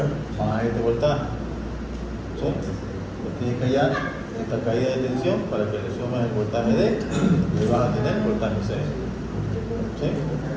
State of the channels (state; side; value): identical; both; correlation 1.00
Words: más este voltaje. ¿Sí? Pues tienes que hallar esta caída de tensión para que le sumes el voltaje D y vas a tener el voltaje C. ¿Sí?